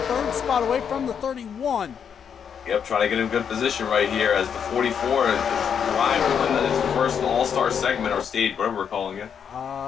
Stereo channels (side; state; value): right; quieter; 7.5 dB